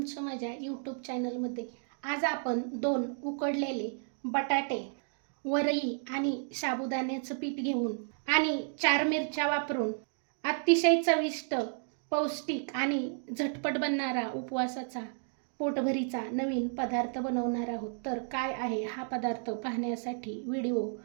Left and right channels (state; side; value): silent; left; 56 dB below the other